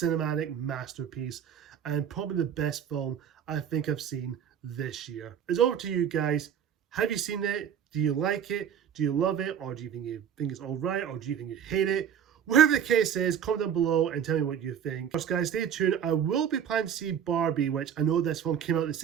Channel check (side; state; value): left; quieter; 8.6 dB